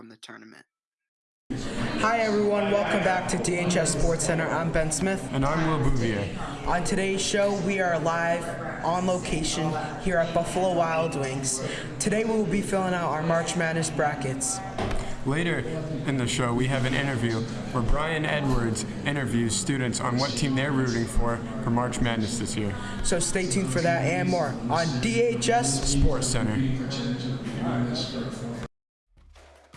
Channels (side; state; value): both; identical; correlation 1.00